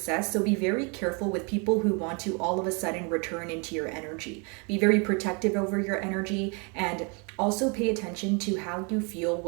So be very careful with people who want to all of a sudden return into your energy. Be very protective over your energy, and also pay attention to how you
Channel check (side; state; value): left; quieter; 33.3 dB